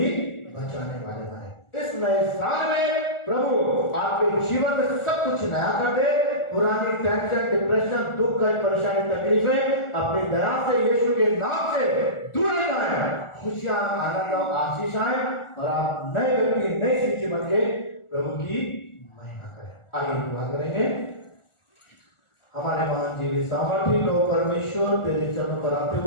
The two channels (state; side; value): late; right; 1.4 ms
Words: बचाने वाले बने। इस नए साल में प्रभु आपके जीवन में सब कुछ नया कर दे। पुरानी टेंशन, डिप्रेशन, दुख, परेशानी, तकलीफें अपनी दया से, यीशु के नाम से दूर जाए। खुशियां, आनंद और आशीष आए और आप नए व्यक्ति, नई सृष्टि बन के प्रभु की महिमा करें। आगे दुआ करेंगे। हमारे महान जीवी सामर्थी लो परमेश्वर, तेरे चरणों पर आते